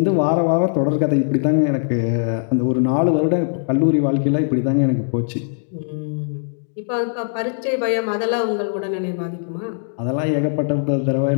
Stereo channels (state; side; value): silent; right; digital silence